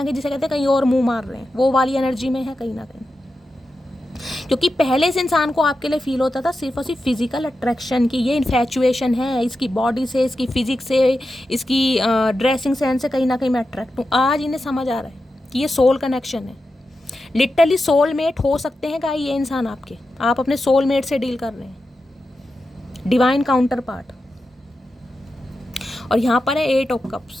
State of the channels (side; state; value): both; normal; correlation 0.90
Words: कहीं जिसे कहते हैं कहीं और मुँह मार रहे हैं, वो वाली एनर्जी में है कहीं ना कहीं। क्योंकि पहले इस इंसान को आपके लिए फील होता था सिर्फ और सिर्फ फिजिकल अट्रैक्शन की, ये इन्फैचुएशन है, इसकी बॉडी से, इसकी फिजिक्स से, इसकी ड्रेसिंग सेंस से कहीं ना कहीं मैं अट्रैक्ट हूँ। आज इन्हें समझ आ रहा है कि ये सोल कनेक्शन है। लिटरली सोलमेट हो सकते हैं क्या ये इंसान आपके, आप अपने सोलमेट से डील कर रहे हैं, डिवाइन काउंटर पार्ट। और यहाँ पर है 8 ऑफ